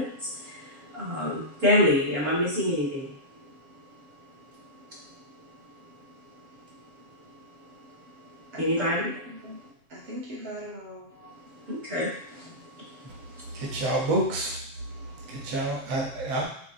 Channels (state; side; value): late; left; 7.5 ms